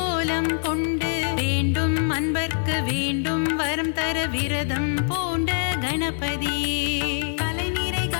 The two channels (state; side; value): silent; right; digital silence